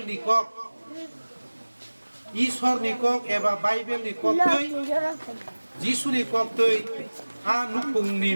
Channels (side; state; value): both; inverted; correlation -1.00